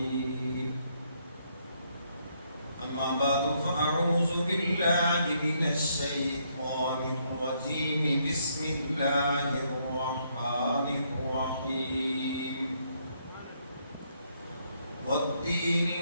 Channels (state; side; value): inverted; both; correlation -0.73